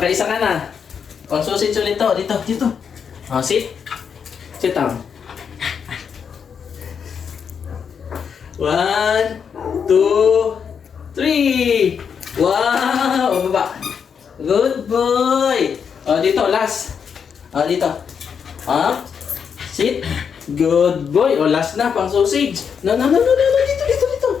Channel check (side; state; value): right; quieter; 6.9 dB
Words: ka na. Pang sausage ulit to. Dito. Oh, sit. Sit down. 1, 2, 3. Wow! Bababa. Good boy! Oh, dito. Last. Oh, dito. Up. Sit. Good boy. Oh, last na. Pang sausage. No. Dito.